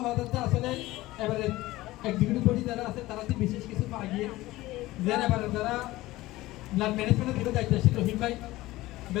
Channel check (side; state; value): right; quieter; 18.0 dB